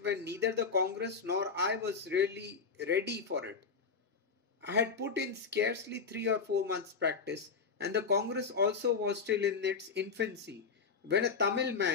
when neither the Congress nor I was really ready for it. I had put in scarcely 3 or 4 months' practice, and the Congress also was still in its infancy, when a Tamil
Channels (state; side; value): quieter; right; 5.4 dB